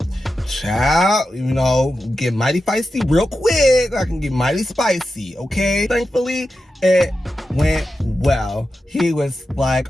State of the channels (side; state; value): both; normal; correlation 0.90